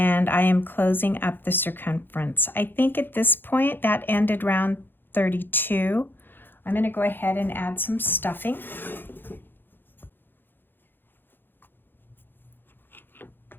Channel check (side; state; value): right; late; 0.098 ms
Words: I am closing up the circumference. I think at this point that ended round 32. I'm going to go ahead and add some stuffing.